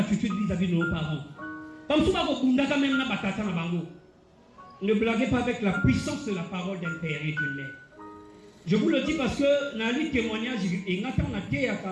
vis-à-vis de nos parents? Comme souvent vous quand même na batata na bango. Ne blaguez pas avec la puissance de la parole d'un père et d'une mère. Je vous le dis parce que dans les témoignages, et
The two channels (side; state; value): both; identical; correlation 1.00